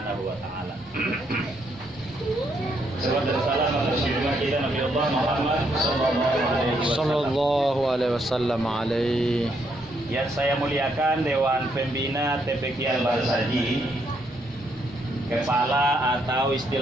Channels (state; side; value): normal; both; correlation 0.74